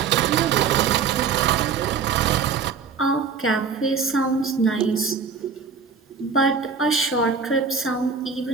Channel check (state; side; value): quieter; left; 5.7 dB